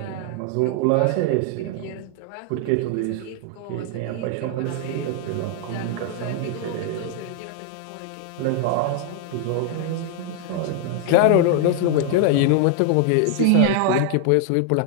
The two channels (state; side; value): different; both; correlation 0.00